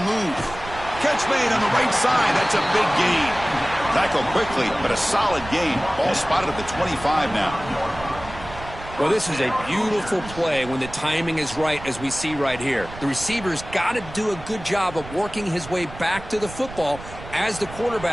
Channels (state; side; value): noise; right; rumble, 14 dB below the sound